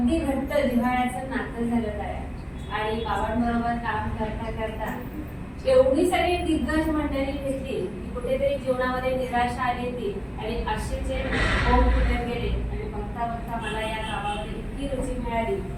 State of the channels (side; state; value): both; identical; correlation 1.00